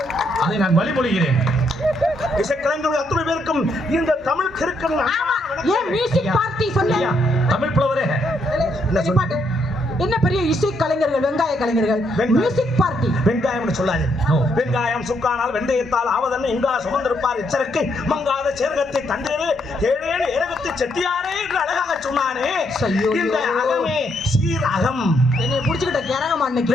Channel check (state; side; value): normal; both; correlation 0.75